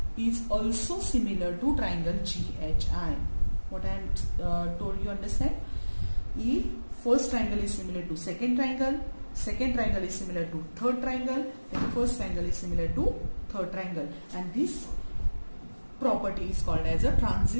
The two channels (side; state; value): both; inverted; correlation -1.00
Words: is also similar to triangle GHI. What I am told you understand? If first triangle is similar to second triangle is similar to third triangle, then first triangle is similar to third triangle, and this property is called as a